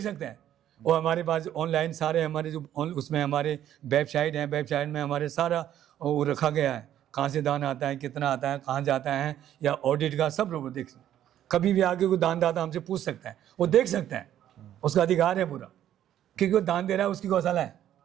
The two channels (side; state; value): left; quieter; 11.4 dB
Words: सकते हैं, वो हमारे पास ऑनलाइन सारे हमारे जो उसमें हमारे वेबसाइट हैं, वेबसाइट में हमारे सारा वो रखा गया है, कहाँ से दान आता है, कितना आता है, कहाँ जाता है, या ऑडिट का सब लोग देख सकते हैं। कभी भी आगे कोई दानदाता हमसे पूछ सकता है, वो देख सकता है, उसका अधिकार है पूरा, क्योंकि वो दान दे रहा है, उसकी गौशाला है।